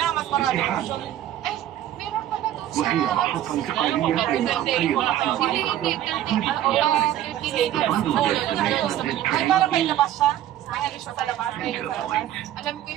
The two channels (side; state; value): left; quieter; 12.2 dB